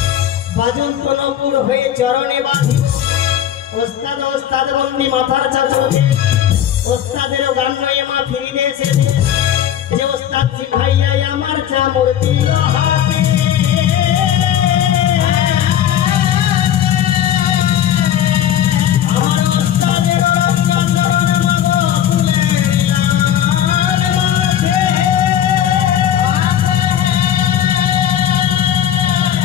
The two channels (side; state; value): right; quieter; 10.5 dB